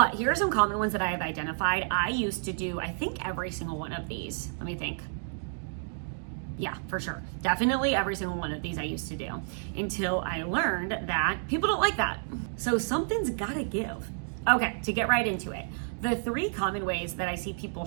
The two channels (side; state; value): left; silent; digital silence